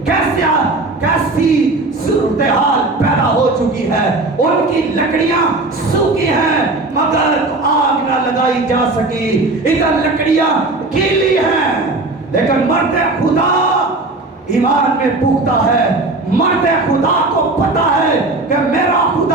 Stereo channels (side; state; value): left; quieter; 3.1 dB